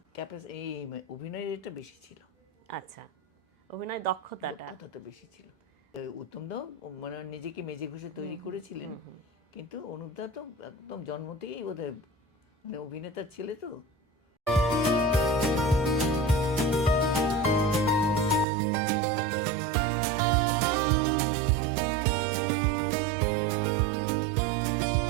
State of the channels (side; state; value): left; drops out; at 18.4 s